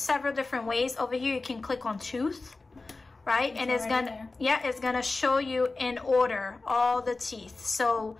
different ways. Over here you can click on tooth, right? And it's gonna show you in order all the teeth, so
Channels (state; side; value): quieter; right; 3.5 dB